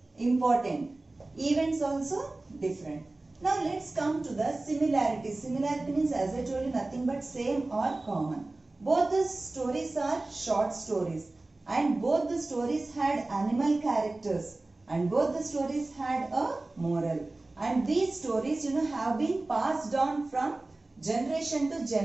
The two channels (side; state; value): left; quieter; 3.0 dB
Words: important. Events also different. Now let's come to the similarities. Similarity means, as I told you, nothing but same or common. Both the stories are short stories, and both the stories had animal characters, and both the stories had a moral. And these stories, have been passed on from generation to